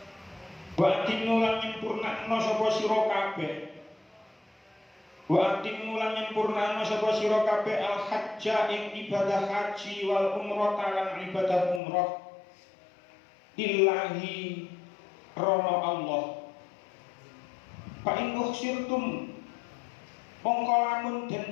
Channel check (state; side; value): drops out; right; at 11.8 s